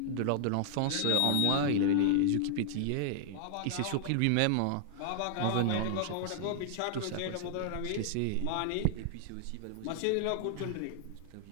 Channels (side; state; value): both; different; correlation 0.00